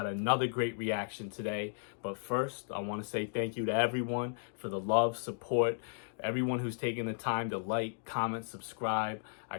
another great reaction today. But first, I want to say thank you to everyone for the love, support, everyone who's taken the time to like, comment, subscribe. I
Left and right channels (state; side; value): silent; right; digital silence